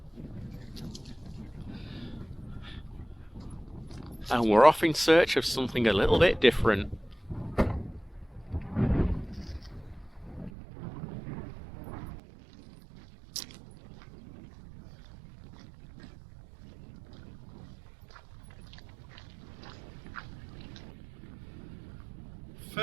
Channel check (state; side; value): drops out; left; at 10.5 s